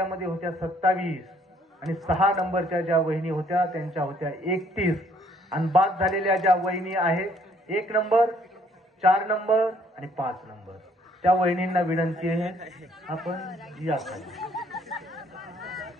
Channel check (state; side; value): normal; both; correlation 0.64